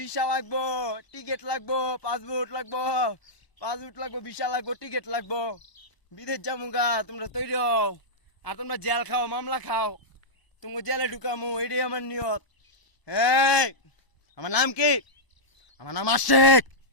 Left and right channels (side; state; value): right; late; 1.0 ms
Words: লাগবো, টিকিট লাগবো, পাসপোর্ট লাগবো, ভিসা লাগবো, টিকিট লাগবো, বিদেশ যাবো। তোমরা তৈরি হও, আর তোমরা জেল খাও, মামলা খাও, তোমাকে জেলে ঢুকামো, এটাই আমার নিয়ত। এই, আমার নাম কি? আমার নাম আশিক,